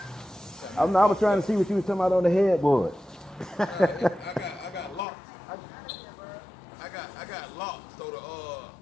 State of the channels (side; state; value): right; drops out; at 5.1 s